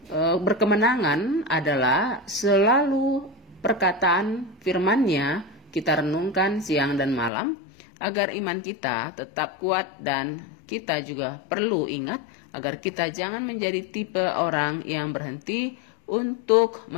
berkemenangan adalah selalu perkataan firman-Nya kita renungkan siang dan malam agar iman kita tetap kuat, dan kita juga perlu ingat agar kita jangan menjadi tipe orang yang berhenti untuk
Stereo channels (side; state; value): right; drops out; at 7.3 s